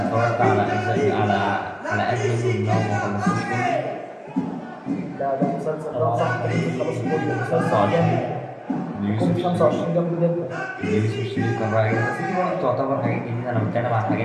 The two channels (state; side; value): identical; both; correlation 1.00